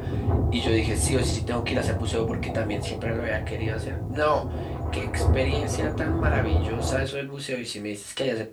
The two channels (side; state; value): both; identical; correlation 1.00